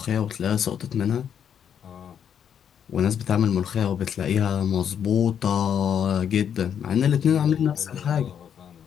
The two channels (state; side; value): quieter; right; 8.5 dB